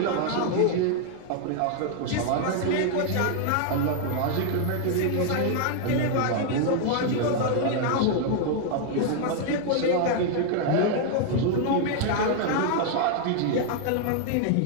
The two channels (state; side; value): different; both; correlation 0.00